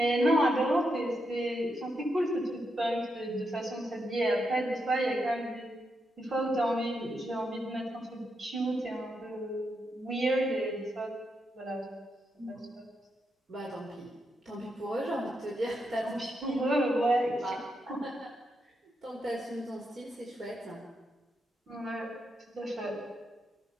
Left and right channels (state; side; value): normal; both; correlation 0.83